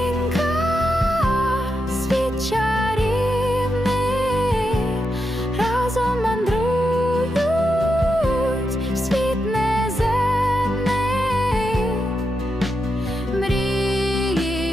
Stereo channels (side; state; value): both; normal; correlation 0.85